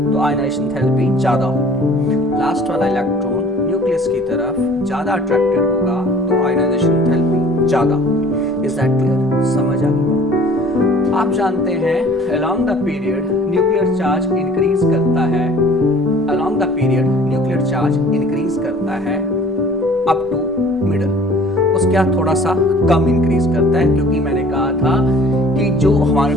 तो आयनाइजेशन एंथैल्पी ज्यादा होगी। लास्ट वाला इलेक्ट्रॉन न्यूक्लियस की तरफ ज्यादा अट्रैक्टेड होगा तो आयनाइजेशन एंथैल्पी ज्यादा होगी। Is that clear? समझ आ गई? आप जानते हैं along the period nuclear charge increase करता है, along the period nuclear charge increase करता है अप टू मिडल। उसके बाद थोड़ा सा कम इंक्रीज करता है, क्योंकि मैंने कहा था कि जो हमारे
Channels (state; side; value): normal; both; correlation 0.50